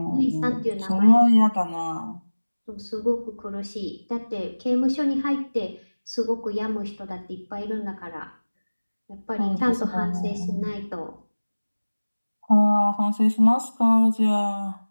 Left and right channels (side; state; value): both; inverted; correlation -1.00